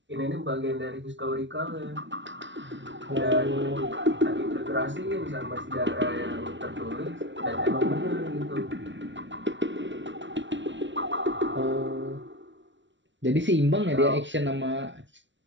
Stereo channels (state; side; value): late; left; 0.54 ms